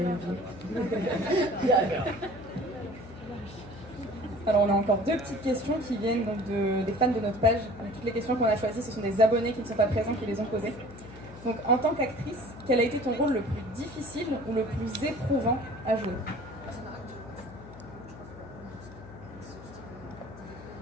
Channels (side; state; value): left; noise; hum, 16 dB below the sound